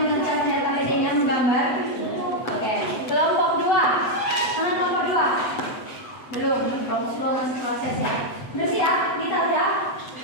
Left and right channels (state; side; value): late; right; 8.0 ms